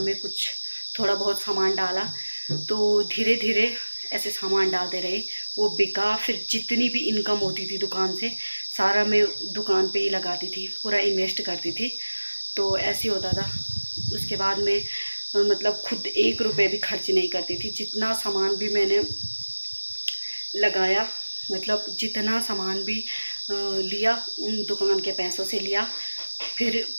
में कुछ थोड़ा बहुत सामान डाला। तो धीरे धीरे ऐसे सामान डालते रहे, वो बिका। फिर जितनी भी इनकम होती थी दुकान से सारा मैं दुकान पे ही लगाती थी, पूरा इन्वेस्ट करती थी। तो ऐसे होता था। उसके बाद में मतलब खुद 1 रुपये भी खर्च नहीं करती थी। जितना सामान भी मैंने लगाया, मतलब जितना सामान भी लिया उन दुकान के पैसों से लिया। फिर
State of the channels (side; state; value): both; inverted; correlation -1.00